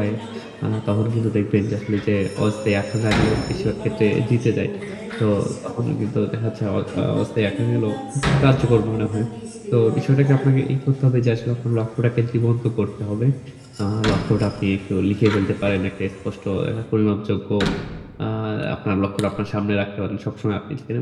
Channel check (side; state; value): both; identical; correlation 1.00